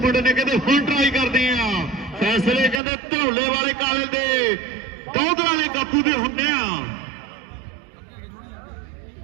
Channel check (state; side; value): drops out; left; at 2.8 s